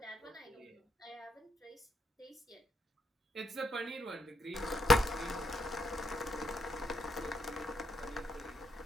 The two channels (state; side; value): normal; both; correlation 0.77